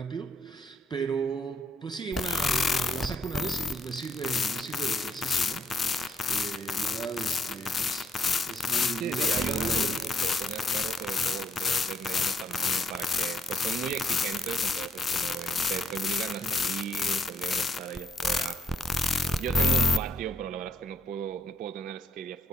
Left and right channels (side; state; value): both; normal; correlation 0.75